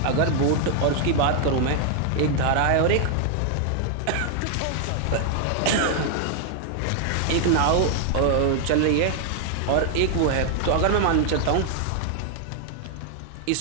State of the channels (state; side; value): different; both; correlation 0.00